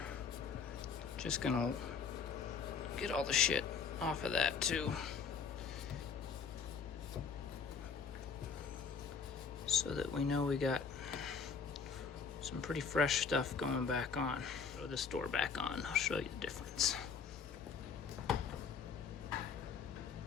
just gonna get all the shit off of that too. So that we know we got some pretty fresh stuff going back on. Throw this door back on, I'll show you the difference.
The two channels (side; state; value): right; quieter; 5.8 dB